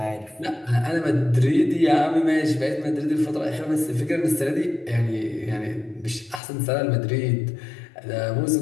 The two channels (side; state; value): right; drops out; at 6.4 s